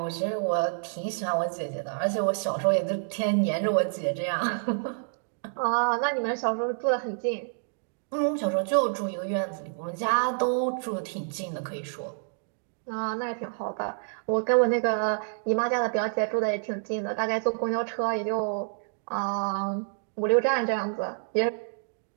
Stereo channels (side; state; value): left; silent; digital silence